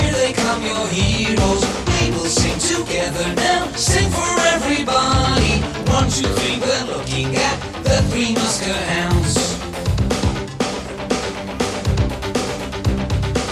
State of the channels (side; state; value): both; identical; correlation 1.00